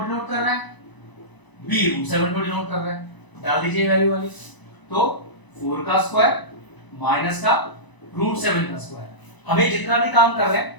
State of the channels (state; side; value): late; right; 1.0 ms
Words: कर रहा है, b √7 को डिनोट कर रहा है। डाल दीजिए वैल्यू वाली, तो 4 का स्क्वायर माइनस का √7 का स्क्वायर। हमें जितना भी काम कर रहे